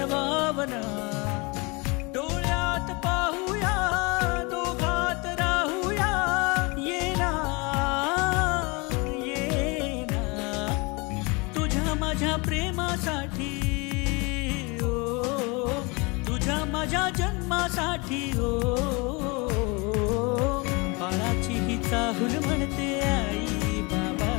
भावना डोळ्यात पाहूया दोघात राहूया ये ना तुझ्या माझ्या प्रेमासाठी ओ तुझ्या माझ्या जन्मासाठी ओ बाळाची ही चाहूल म्हणते आई बाबा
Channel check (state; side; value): quieter; right; 28.0 dB